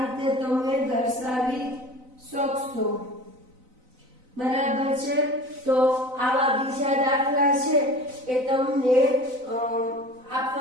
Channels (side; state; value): left; late; 4.0 ms